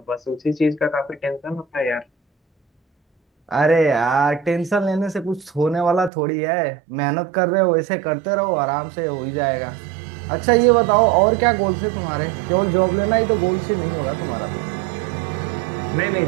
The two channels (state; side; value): drops out; left; at 6.1 s